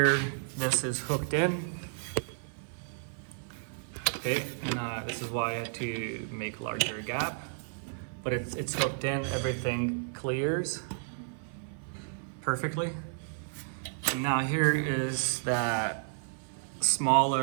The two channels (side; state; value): left; silent; 56 dB below the other